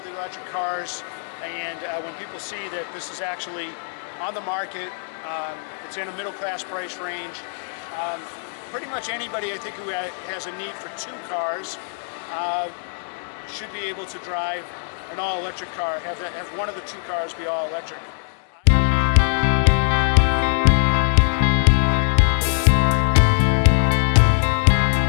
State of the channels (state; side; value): silent; right; digital silence